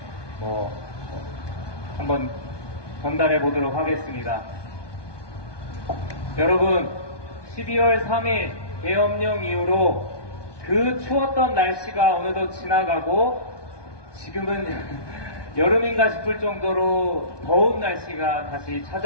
한번 전달해 보도록 하겠습니다. 여러분, 12월 3일 계엄령 이후로 그 추웠던 날씨가 어느덧 지나가고 지금은 여름인가 싶을 정도로 더운 날씨가 다시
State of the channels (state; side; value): late; right; 1.2 ms